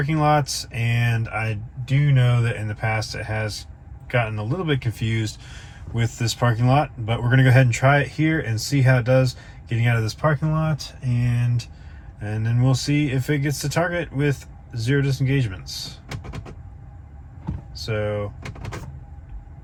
lots, and I do know that in the past it has gotten a little bit confused with this parking lot, but we're going to go ahead and try it here and see how it does getting out of this parking lot, and then we'll see if it gets to Target with 0 disengagements. So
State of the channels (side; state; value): both; identical; correlation 1.00